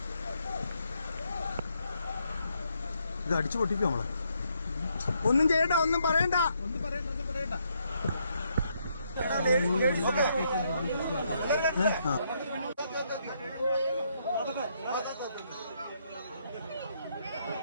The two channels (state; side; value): inverted; both; correlation -0.75